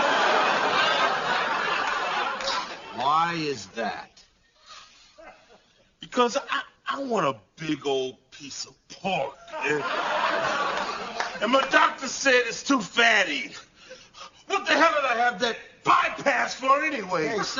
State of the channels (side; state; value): both; identical; correlation 1.00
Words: Why is that? Because I want a big old piece of pork. And my doctor said it's too fatty. What the hell did I have that bypass for anyway? Hey,